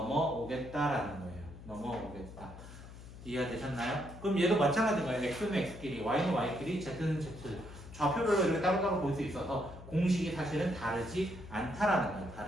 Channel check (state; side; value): noise; left; hum, 15 dB below the sound